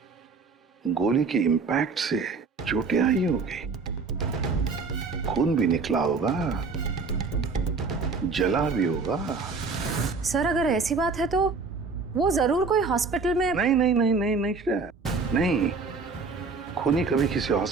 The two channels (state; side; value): quieter; left; 4.5 dB